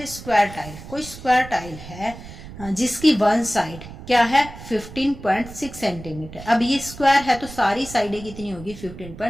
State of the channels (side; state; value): right; noise; rumble, 14 dB below the sound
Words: square tile, कोई स्क्वायर टाइल है जिसकी वन साइड क्या है 15.6 सेंटीमीटर। अब ये स्क्वायर है तो सारी साइडें कितनी होगी